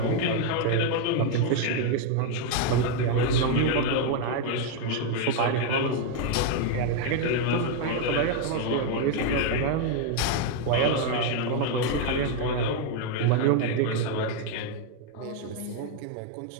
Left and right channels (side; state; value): both; different; correlation 0.01